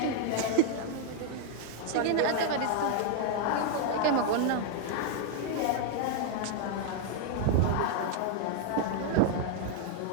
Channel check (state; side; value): different; both; correlation 0.00